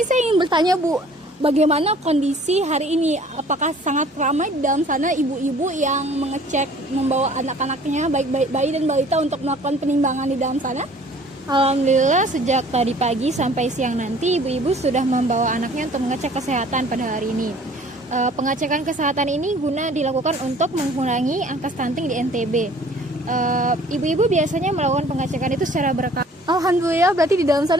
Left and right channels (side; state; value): both; normal; correlation 0.52